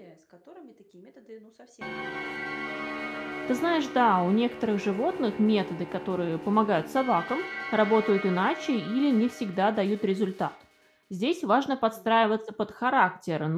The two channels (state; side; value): identical; both; correlation 1.00